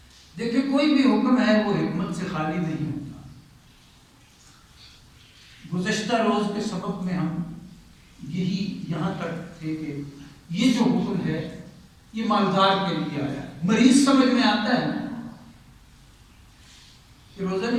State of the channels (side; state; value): both; identical; correlation 1.00